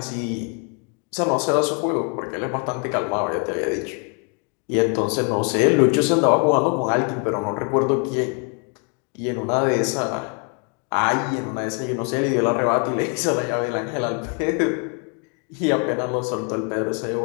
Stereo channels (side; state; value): right; quieter; 37.5 dB